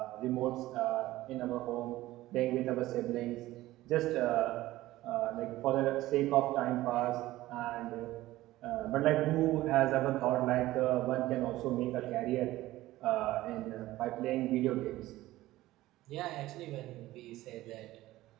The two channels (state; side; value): quieter; left; 16.6 dB